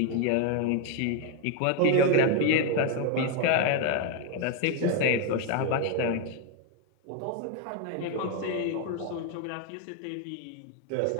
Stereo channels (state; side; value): different; both; correlation 0.01